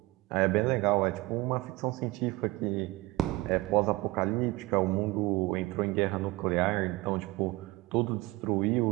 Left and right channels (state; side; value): quieter; left; 21.0 dB